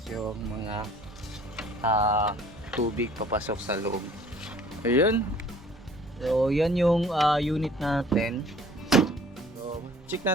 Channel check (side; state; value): both; normal; correlation 0.52